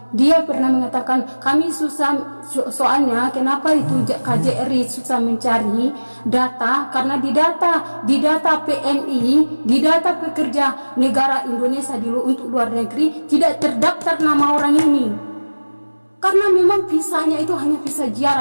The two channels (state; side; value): inverted; both; correlation -1.00